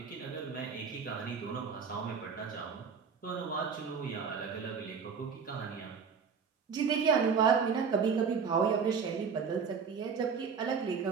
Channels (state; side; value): quieter; left; 6.1 dB